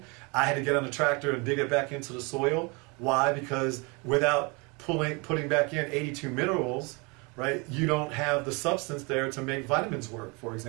I had to get on the tractor and dig it back into the soil. Why? Because without putting back in 82 minerals, right, you don't have the substance there to make vitamins work, for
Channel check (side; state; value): left; quieter; 29.3 dB